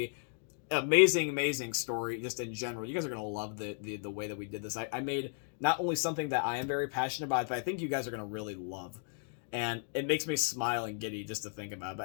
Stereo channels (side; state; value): right; silent; 55 dB below the other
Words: amazing story just in general. You guys are going to love the way that we did this. I made not only something that I am very passionate about, but I think you guys are going to really love. And it makes me smile and giddy just to think about it.